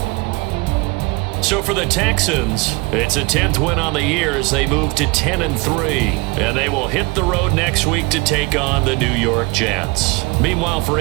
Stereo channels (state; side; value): quieter; left; 25.8 dB